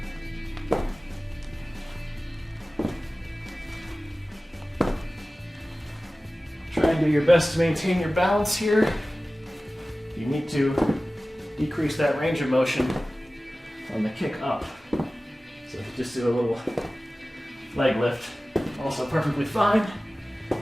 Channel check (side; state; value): both; normal; correlation 0.97